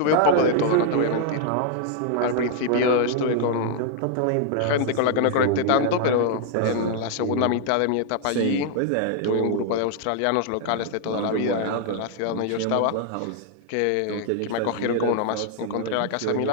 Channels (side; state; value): both; different; correlation 0.00